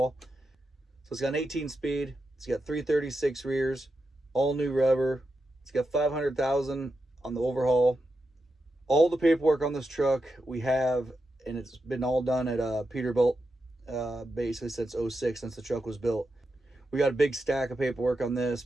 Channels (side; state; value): both; normal; correlation 0.87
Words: So it's got an 18 speed. It's got 336 rears, all new rubber. It's got 500,000 on the Overhaul. All the paperwork on this truck we have, and it's been all done at Peterbilt, basically since 06, since the truck was built. We got a big stack of paperwork on this,